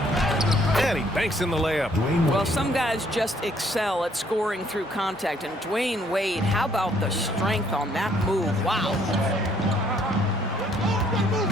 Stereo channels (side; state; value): both; normal; correlation 0.65